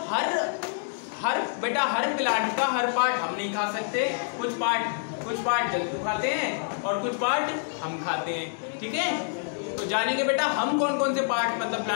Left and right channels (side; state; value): right; silent; digital silence